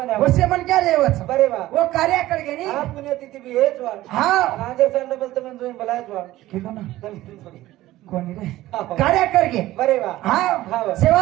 वसे मन क्या रेवच बरे वा वो कार्य कर गे नी हा पुण्यतिथी बी हेच वा हा राजे सांड बोलतो पण तुम्ही बोलायच वा किलो ना कोणी रे हा. कार्य कर गे बरे वा हा हा वा.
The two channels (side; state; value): left; quieter; 16.0 dB